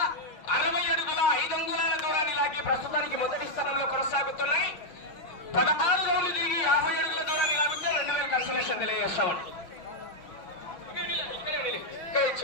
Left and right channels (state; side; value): late; right; 5.7 ms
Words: ప్రస్తుతానికి మొదటి స్థానంలో కొనసాగుతున్నాయి. 16 నుండి దిగి 50 అడుగుల దూరాన్ని లాగితే 2000 కన్సలేషన్ తెలియజేస్తామని